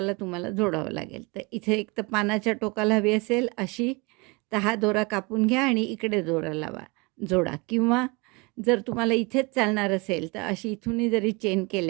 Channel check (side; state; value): left; quieter; 27.4 dB